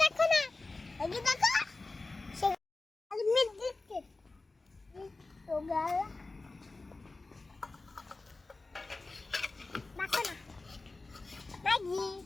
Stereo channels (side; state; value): right; quieter; 3.4 dB